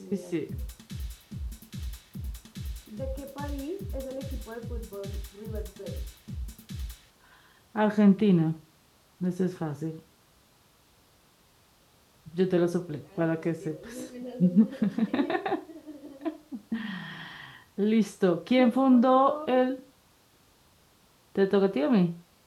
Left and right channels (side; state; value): both; identical; correlation 1.00